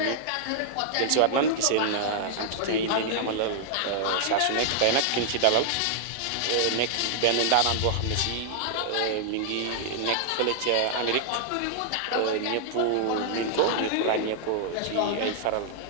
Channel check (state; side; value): different; both; correlation -0.01